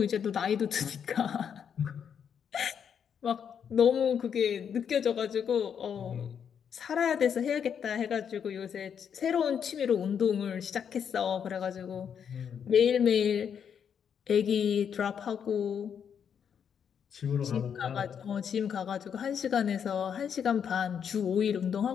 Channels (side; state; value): right; quieter; 7.8 dB